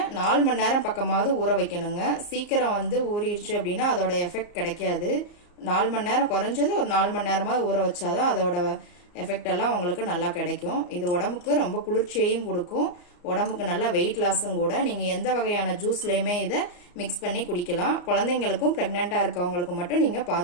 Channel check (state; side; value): late; right; 34 ms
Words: 4 மணி நேரம் பக்கமாவது ஊற வைக்கணுங்க. சீக்கிரம் வந்து ஊறிடுச்சு அப்படின்னா அதோட எஃபெக்ட் கிடைக்காது. 4 மணி நேரம் குறைஞ்சது ஒரு 4 மணி நேரமாவது ஊற வச்சாதான் அதோட எஃபெக்ட் எல்லாம் உங்களுக்கு நல்லா கிடைக்கும். இது உடம்புக்கு ரொம்ப குளிர்ச்சியையும் கொடுக்கும், உடம்புக்கு நல்ல வெயிட் லாஸும் கூட. நீங்க எந்த வகையான ஜூஸ்லயுமே இதை மிக்ஸ் பண்ணி குடிக்கலாம். குழந்தைங்களுக்கும் பிரெக்னெண்டா இருக்கவங்களுக்கும் மட்டும் நீங்க